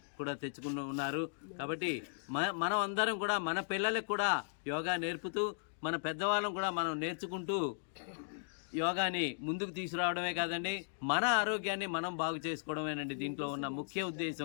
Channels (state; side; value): silent; right; digital silence